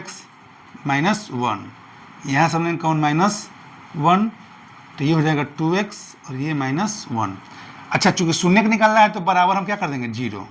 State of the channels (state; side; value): identical; both; correlation 1.00